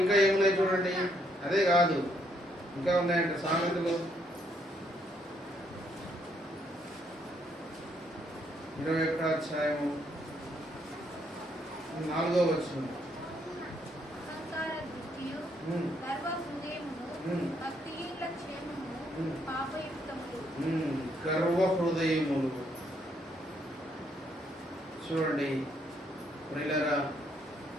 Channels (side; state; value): both; normal; correlation 0.72